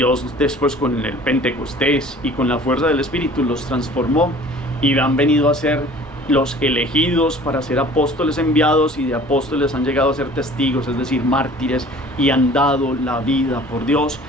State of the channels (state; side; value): normal; both; correlation 0.47